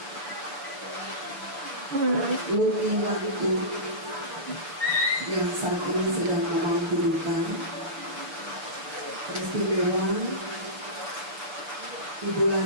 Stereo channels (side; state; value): left; late; 7.0 ms